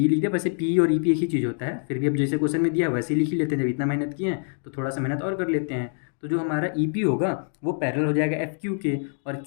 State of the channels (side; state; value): right; silent; digital silence